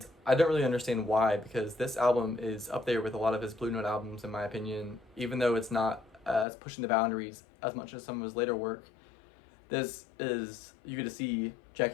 I don't really understand why, because this album is up there with a lot of his Blue Note albums, in my opinion, even though it's not as pushing the boundaries as much as some of his later work. This is, you get to see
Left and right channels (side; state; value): right; drops out; at 6.5 s